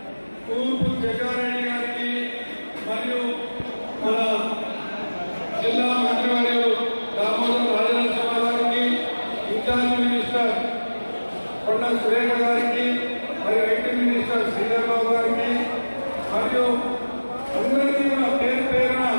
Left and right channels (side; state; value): both; inverted; correlation -1.00